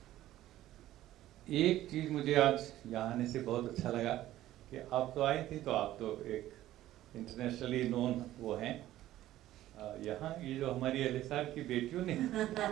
एक चीज़ मुझे आज यहाँ आने से बहुत अच्छा लगा कि आप तो आई थी, तो आप तो एक इंटरनेशनली नोन वो हैं यहाँ, ये जो हमारी एलिसार की बेटियों ने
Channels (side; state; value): left; quieter; 14.3 dB